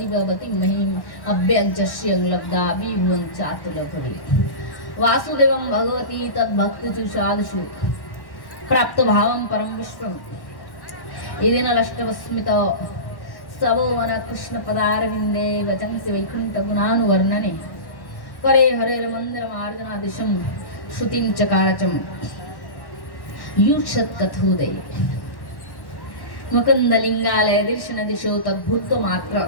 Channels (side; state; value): right; late; 1.1 ms